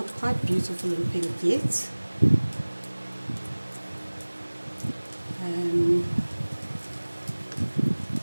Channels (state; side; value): inverted; both; correlation -1.00